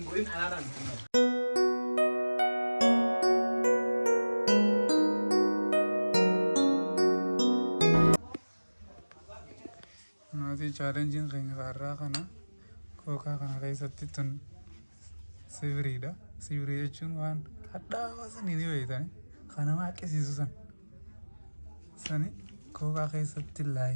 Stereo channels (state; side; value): inverted; both; correlation -1.00